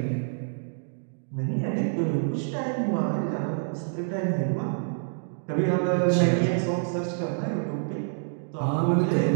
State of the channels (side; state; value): left; silent; digital silence